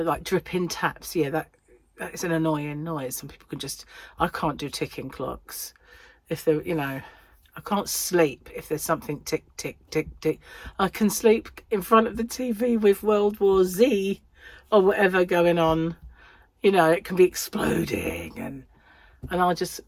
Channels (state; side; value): identical; both; correlation 1.00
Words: like, dripping taps. Yeah, that is an annoying noise. Some people can just, I can't do ticking clocks. If they're, you know, I can't sleep if there's something tick, tick, tick, tick. I can sleep in front of the TV with World War Z or whatever going on. You know, it can be exploding and I'll just